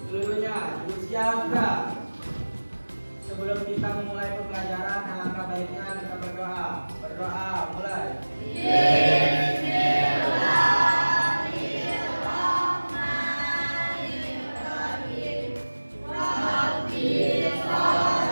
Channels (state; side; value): inverted; both; correlation -1.00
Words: Seluruhnya bersiap. Sebelum kita memulai pembelajaran, alangkah baiknya kita berdoa. Berdoa, mulai.